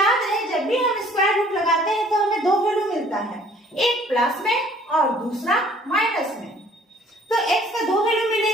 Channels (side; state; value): both; normal; correlation 0.56